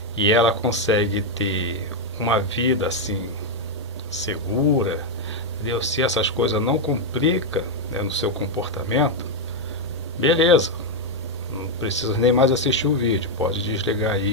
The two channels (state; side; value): normal; both; correlation 0.01